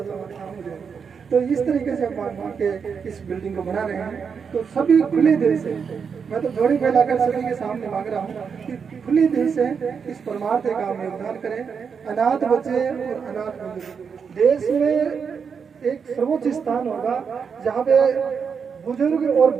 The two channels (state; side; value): quieter; left; 6.3 dB